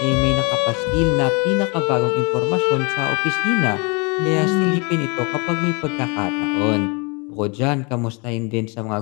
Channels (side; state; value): right; quieter; 31.0 dB